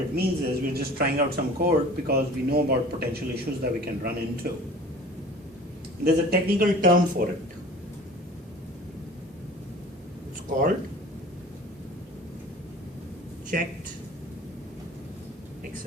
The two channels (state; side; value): normal; both; correlation 0.43